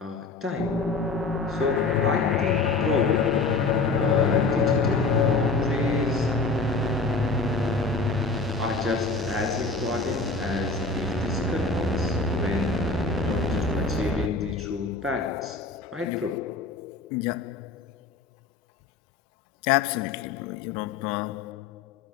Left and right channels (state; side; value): quieter; right; 3.7 dB